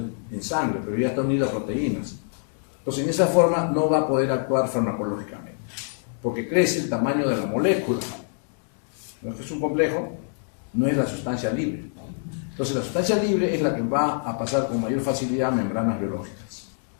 en sangre, pero ya está unido a proteínas. Entonces, en esa forma no va a poder actuar farmacológicamente, porque crece el tamaño de la molécula. No es que es un complejo, no es la sustancia libre. Entonces, la sustancia libre es la que va a pasar con mayor facilidad a membranas biológicas,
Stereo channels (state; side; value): silent; right; digital silence